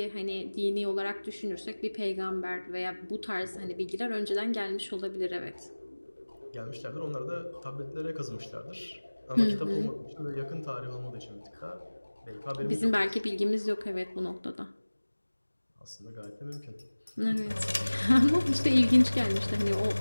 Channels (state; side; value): inverted; both; correlation -1.00